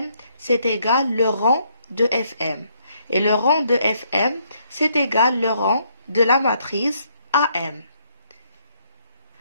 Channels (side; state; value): both; inverted; correlation -0.71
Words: c'est égal le rang de Fm. Et le rang de Fm, c'est égal le rang de la matrice AM.